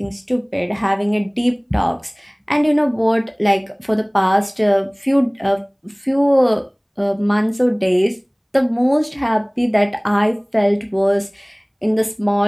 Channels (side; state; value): both; identical; correlation 1.00